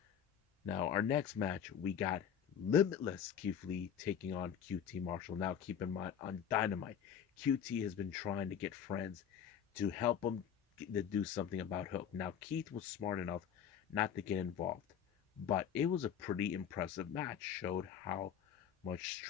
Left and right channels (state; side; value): quieter; right; 8.5 dB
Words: Now, our next match, we got Limitless Keith Lee taking on QT Marshall. Now, keep in mind, on Dynamite, QT has been trying to get friends to help him to do something about Hook. Now, Keith was smart enough not to get involved, but it was a pretty impressive match. Showed how much